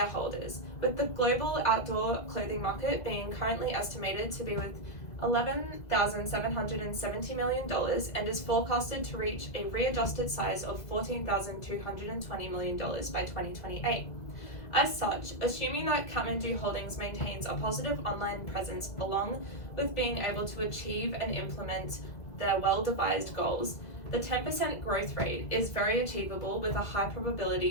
with the global outdoor clothing market being currently estimated to be with $11,770 million and is forecasted to reach a readjusted size of $14,220 million by 2028. As such, assuming that Kathmandu Holdings maintains a positive online presence along with being able to achieve and implement their well-devised goals, the 10% growth rate is very achievable with a high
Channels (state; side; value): late; right; 1.9 ms